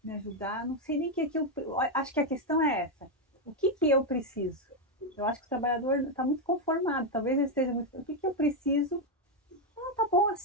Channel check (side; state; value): both; normal; correlation 0.04